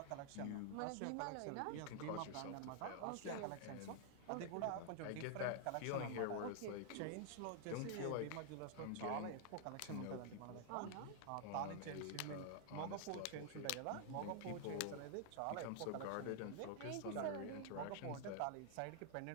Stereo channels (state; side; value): different; both; correlation 0.00